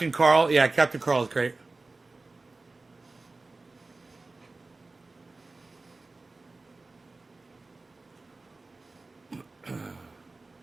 Carl. Yeah, Captain Carl is great.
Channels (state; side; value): quieter; left; 3.4 dB